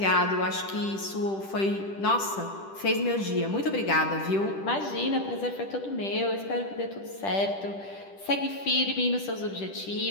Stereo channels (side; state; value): right; late; 10 ms